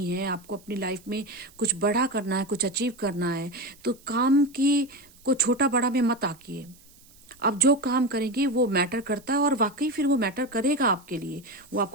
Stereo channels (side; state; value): right; noise; hiss, 26 dB below the sound